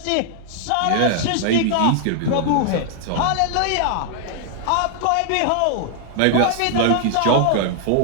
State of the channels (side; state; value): both; different; correlation 0.00